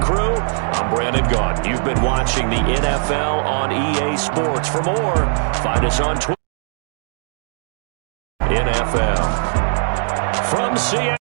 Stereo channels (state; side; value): silent; left; digital silence